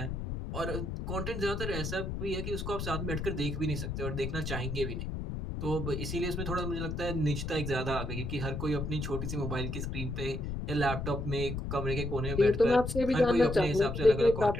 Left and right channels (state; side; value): noise; left; rumble, 4 dB below the sound